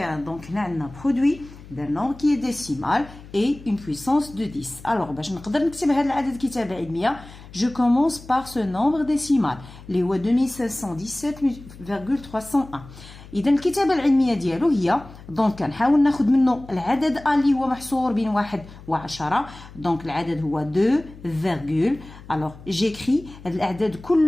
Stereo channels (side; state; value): left; noise; hum, 18 dB below the sound